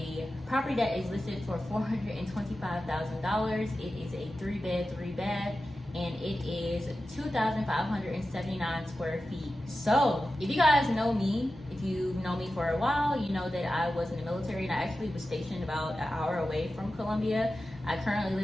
property that is listed for $425,000. It is a 3-bed, 3-bath, and it is 2,579 square feet. So if you guys know me, if you've known me for a while, you know that I was in the military and I actually was stationed about an hour away from Columbia. I currently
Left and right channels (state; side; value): normal; both; correlation 0.93